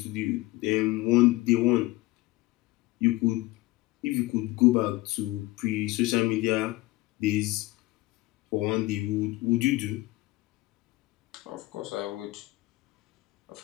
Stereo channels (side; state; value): right; quieter; 19.7 dB